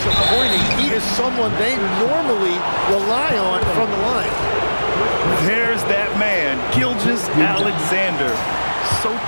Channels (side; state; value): both; inverted; correlation -1.00